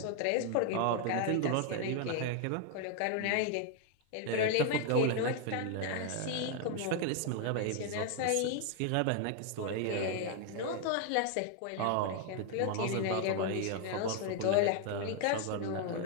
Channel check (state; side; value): different; both; correlation 0.01